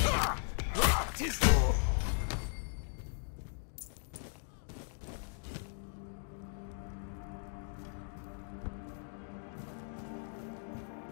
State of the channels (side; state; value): right; silent; 53 dB below the other